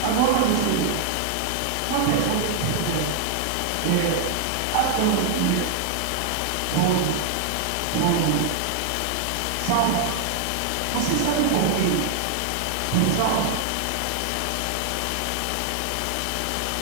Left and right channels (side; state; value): both; different; correlation 0.00